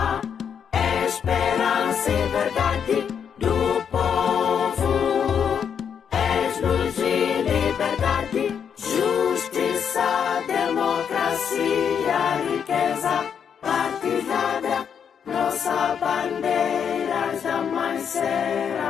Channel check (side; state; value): right; quieter; 7.6 dB